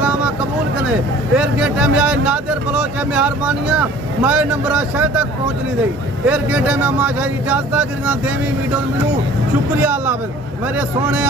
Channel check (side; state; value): both; normal; correlation 0.49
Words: कबूल करे एर गेटे में आए नादिर बलोच है मेहरबानियां मैं नंबर शायद तक पहुंच नहीं रही एर गेटे में माशा इजाजत गिरना देवी वीडियो मिलूं शुक्रिया अल्लाह मेरे सोने